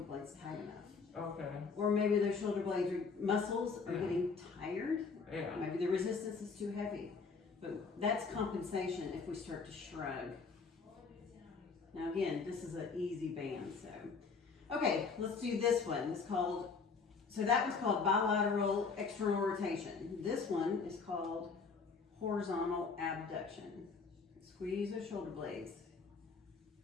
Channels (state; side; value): quieter; right; 5.0 dB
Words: blades tight enough. Okay. Or maybe those shoulder blades or muscles are getting tired. Yeah. Maybe the resistance is too heavy. But that's compensation if we start to shrug. Now again, this is an easy band, so. Okay, let's do this one. It's called, so that was called bilateral external rotation. This one is called horizontal abduction. Squeeze the shoulder blades.